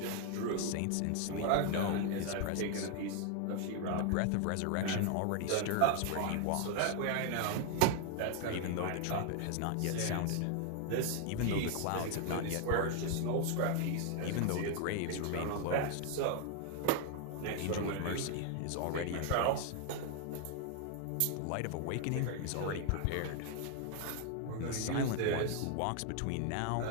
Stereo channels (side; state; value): both; different; correlation 0.00